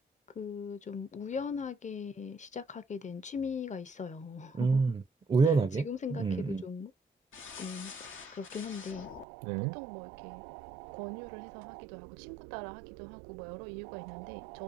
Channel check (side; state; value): left; drops out; at 9.2 s